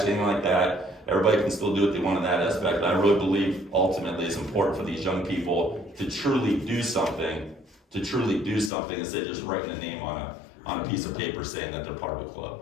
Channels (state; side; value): drops out; right; at 8.7 s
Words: anything like that. everybody can still do what they want in that aspect. And I really believe ultimately it's important for these young people to truly do something instead of just writing a name on a piece of paper saying that they're part of a club,